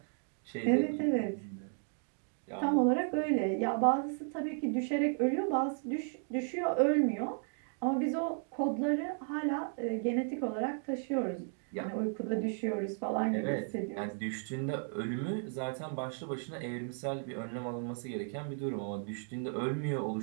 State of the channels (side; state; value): left; silent; 55 dB below the other